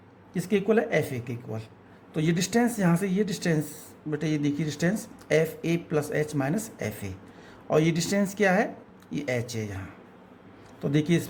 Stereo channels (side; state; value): both; identical; correlation 1.00